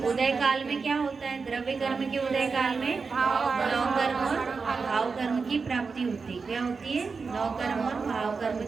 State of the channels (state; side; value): quieter; left; 4.8 dB